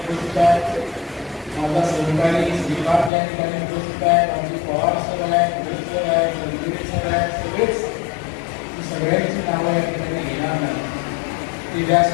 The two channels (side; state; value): right; drops out; at 3.1 s